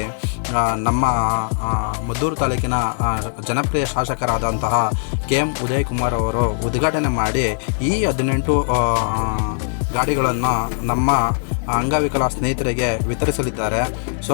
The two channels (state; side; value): silent; right; digital silence